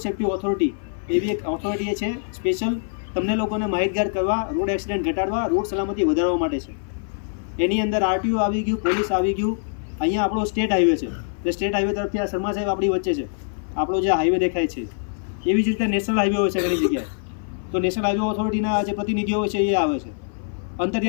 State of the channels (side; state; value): right; silent; 56 dB below the other